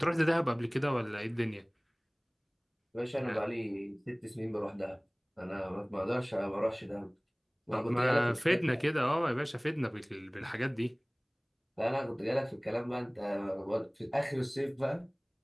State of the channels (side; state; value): both; identical; correlation 1.00